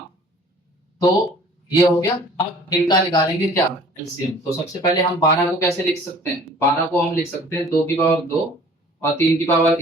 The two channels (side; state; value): both; normal; correlation 0.50